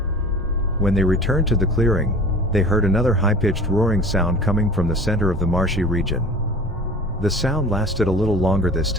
When they returned to the clearing, they heard another high-pitched roaring sound coming from the center of the marshy region. The sound lasted a little longer this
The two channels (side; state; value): both; normal; correlation 0.40